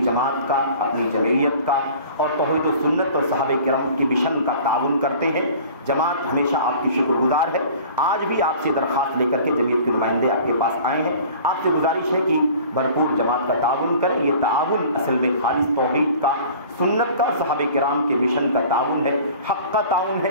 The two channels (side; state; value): both; inverted; correlation -0.45